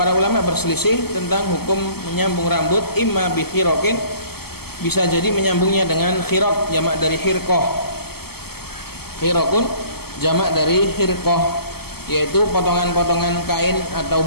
ulama berselisih tentang hukum menyambung rambut, imma bi khiraqin, bisa jadi menyambungnya dengan khiraq, jamak dari khirqah. Khiraqun jamak dari khirqah, yaitu potongan-potongan kain atau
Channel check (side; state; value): right; late; 0.96 ms